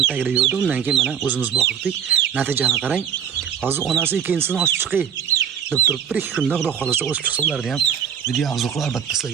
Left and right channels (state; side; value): quieter; left; 8.2 dB